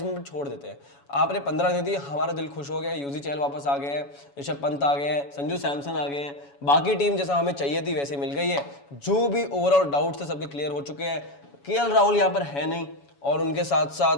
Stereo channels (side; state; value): right; late; 7.1 ms